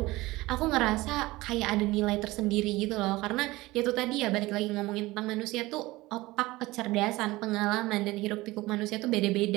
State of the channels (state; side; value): quieter; left; 19.8 dB